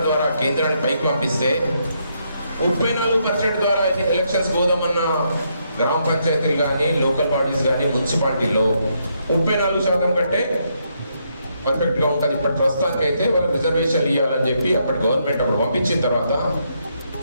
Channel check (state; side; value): inverted; both; correlation -0.77